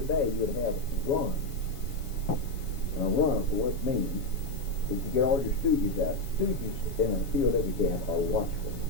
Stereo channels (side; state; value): right; late; 7.2 ms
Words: day you'd have runs. And a run, of course, means that you get all your stooges out. Stooges in a POW camp are watchful,